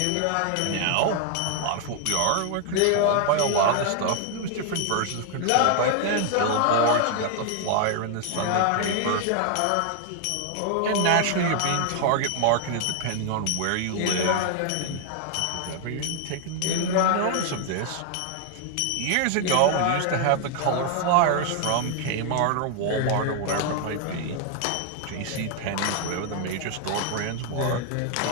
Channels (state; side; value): different; both; correlation 0.00